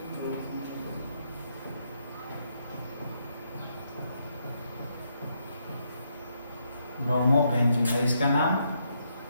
ब्रोमोबेंजीन है इसका नाम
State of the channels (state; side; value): inverted; both; correlation -0.77